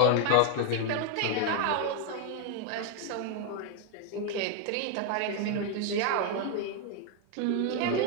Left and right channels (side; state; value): both; different; correlation 0.00